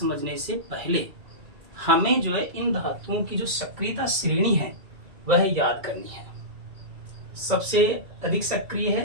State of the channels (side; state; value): left; late; 2.3 ms